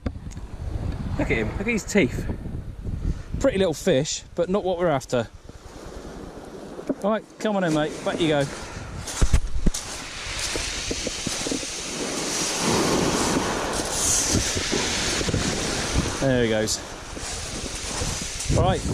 at him, look at his teeth. Pretty little fish, but not what we're after. Alright, come on in mate, back you go. There he goes. Right,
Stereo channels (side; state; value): both; identical; correlation 1.00